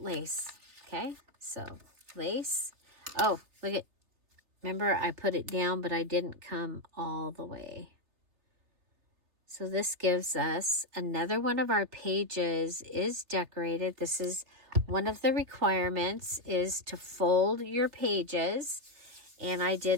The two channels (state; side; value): late; left; 3.5 ms